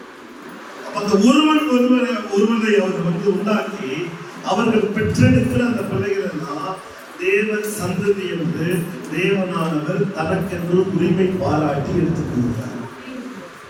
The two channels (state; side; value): identical; both; correlation 1.00